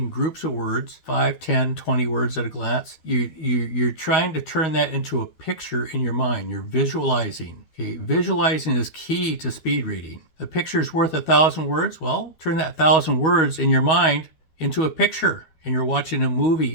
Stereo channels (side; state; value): right; late; 12 ms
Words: groups of words, 5, 10, 20 words at a glance. You're trying to turn that into a picture in your mind. You're visualizing. Okay, visualizing is key to speed reading. A picture is worth 1,000 words. Well, turn that 1,000 words in your mind into a picture, and you're watching a